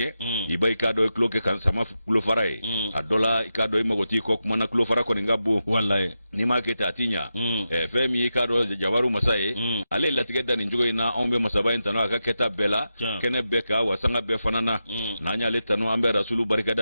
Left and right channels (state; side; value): inverted; both; correlation -0.89